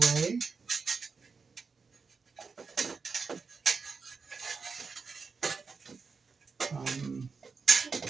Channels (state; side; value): quieter; left; 5.0 dB